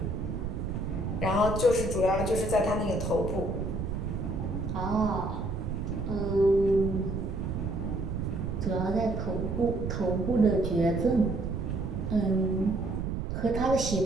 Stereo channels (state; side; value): noise; right; rumble, 3 dB below the sound